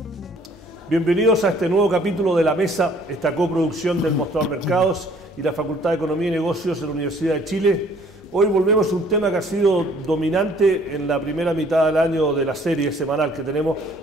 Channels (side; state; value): both; normal; correlation 0.58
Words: Bienvenidos a este nuevo capítulo de La Mesa, esta coproducción del Mostrador Mercados y la Facultad de Economía y Negocios de la Universidad de Chile. Hoy volvemos a un tema que ha sido dominante en la primera mitad del año de la serie semanal que tenemos,